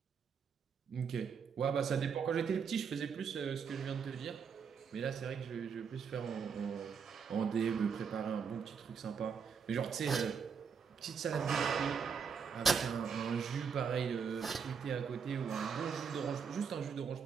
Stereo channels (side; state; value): left; quieter; 6.4 dB